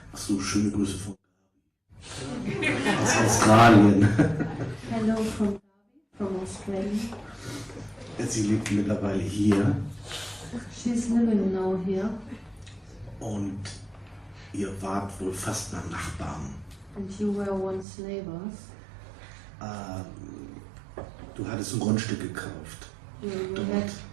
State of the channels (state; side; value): drops out; left; at 17.9 s